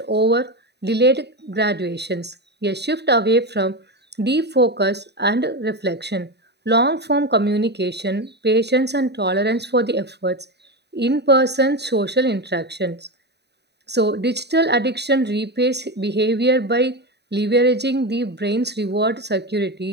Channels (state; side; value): late; left; 0.49 ms